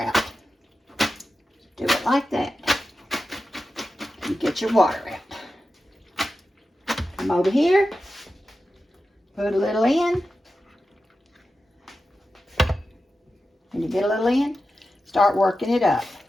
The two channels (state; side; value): normal; both; correlation 0.92